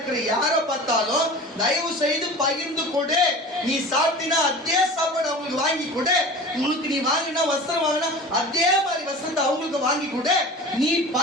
யாரை பார்த்தாலும் தயவு செய்து பகிர்ந்து கொடு. நீ சாப்பிட்டீங்கன்னா அதே சாப்பாடு அவங்களுக்கு வாங்கி கொடு. உங்களுக்கு நீ வாங்கினா வஸ்திரம் வாங்கினா அதே மாதிரி வஸ்திரத்தை அவங்களுக்கு வாங்கி கொடு. நீ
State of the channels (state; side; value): normal; both; correlation 0.37